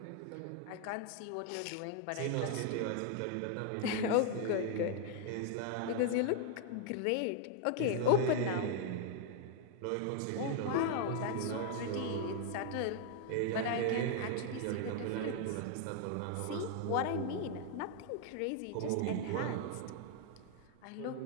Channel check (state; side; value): different; both; correlation 0.00